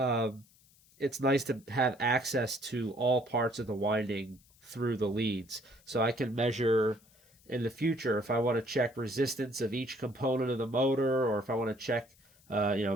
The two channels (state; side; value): noise; left; hiss, 29 dB below the sound